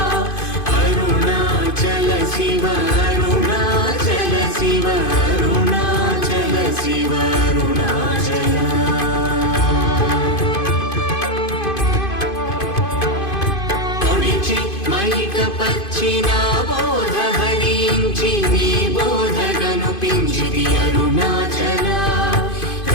అరుణాచల శివ అరుణాచల శివ అరుణాచల శివ అరుణాచల మైక పచ్చిన బోధ హరించి నీ బోధగను పించిది అరుణాచల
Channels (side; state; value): right; late; 2.5 ms